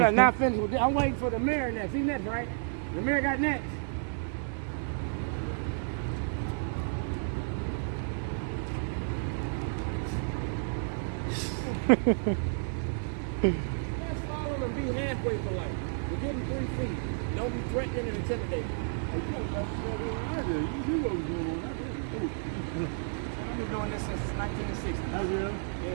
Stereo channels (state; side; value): silent; left; 57 dB below the other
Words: not finished with this. I'm waiting for the mayor next. He next, right? The mayor got next. Let's follow him and be halfway for life. We're getting 3 feet. Don't be threatening and intimidating. You know what was going on. I've been doing this since 1960. Have you?